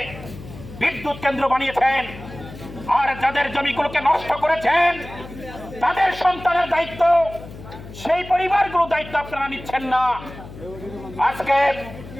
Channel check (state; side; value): noise; left; hum, 15 dB below the sound